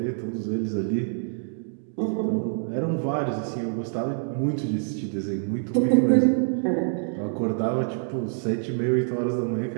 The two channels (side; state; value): left; silent; digital silence